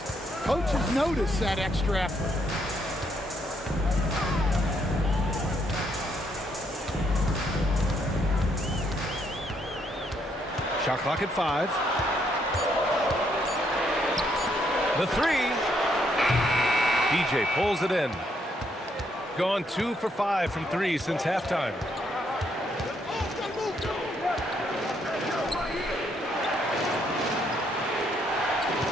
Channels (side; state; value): both; normal; correlation 0.73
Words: Coaches notice that extra effort. Shot clock at 5. The 3. DJ pulls it in. Gone 2 for 5 from 3 since halftime.